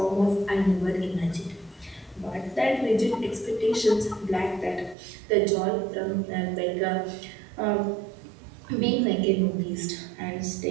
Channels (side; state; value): left; drops out; at 5.0 s